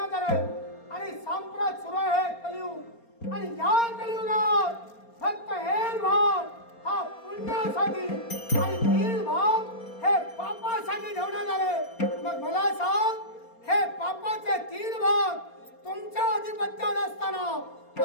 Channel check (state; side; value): late; right; 4.3 ms